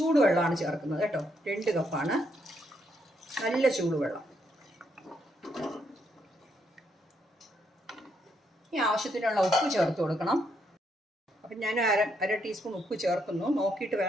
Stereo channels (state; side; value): normal; both; correlation 0.76